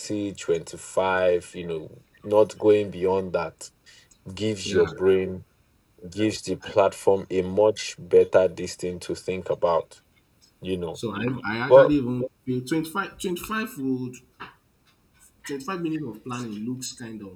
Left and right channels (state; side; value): identical; both; correlation 1.00